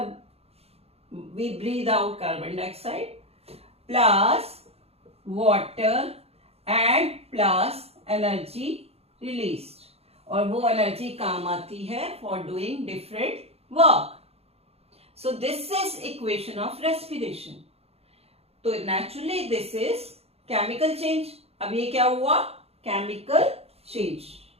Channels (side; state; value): left; late; 0.29 ms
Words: we breathe out carbon dioxide plus water and plus energy released, और वो energy काम आती है for doing different work. So this is equation of respiration. तो naturally this is chemical change. अब ये क्या हुआ? Chemical change.